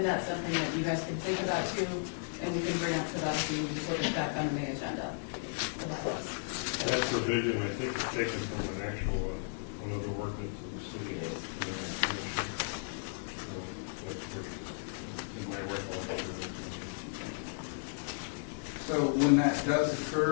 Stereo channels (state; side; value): silent; right; digital silence